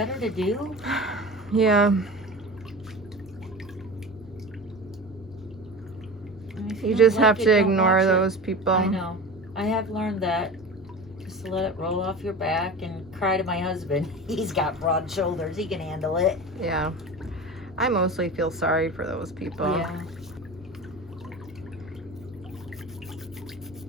to do? Yeah. You just have to ignore those people. I know. I have learned that. Just to let it roll off your back and cry to my husband. He's got broad shoulders. He can handle it. Yeah. I mostly feel sorry for those people. Yeah.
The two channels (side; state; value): both; normal; correlation 0.32